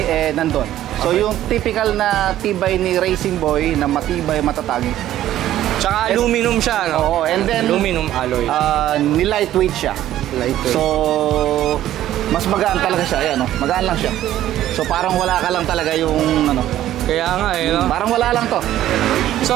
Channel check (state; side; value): quieter; left; 12.9 dB